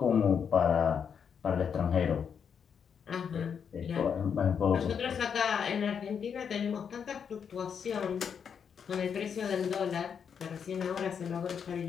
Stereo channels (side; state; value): right; quieter; 7.1 dB